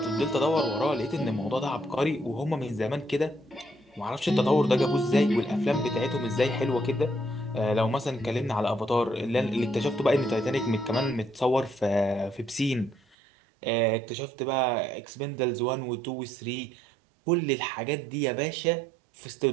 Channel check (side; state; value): left; drops out; at 13.2 s